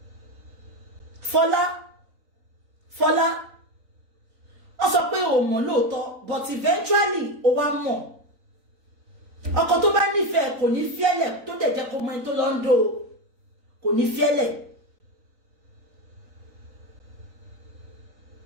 Fọlá. Ó sọ pé ó mọ̀ lóòótọ́, but eventually ó wá mọ̀. Ọkọ tó bá nífẹ̀ẹ́ kò ní fiẹ́lẹ̀ tó dẹ̀ jẹ́ kó mọ ẹni tó lọ ń dó. Kò ní fiẹ́lẹ̀.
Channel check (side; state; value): left; late; 3.9 ms